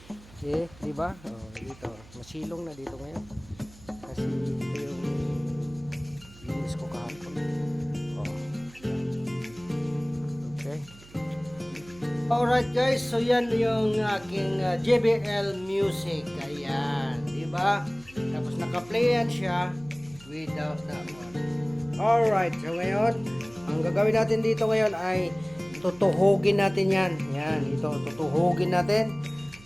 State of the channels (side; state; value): right; noise; hum, 22 dB below the sound